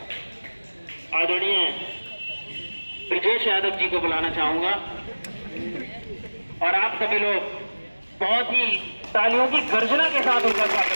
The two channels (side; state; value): both; inverted; correlation -1.00